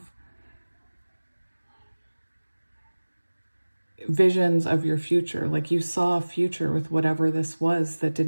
visions of your future. Like you saw a future with whatever this was that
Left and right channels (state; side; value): inverted; both; correlation -1.00